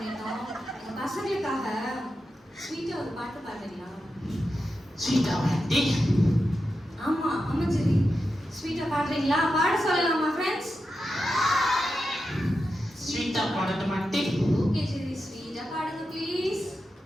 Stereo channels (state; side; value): normal; both; correlation 0.89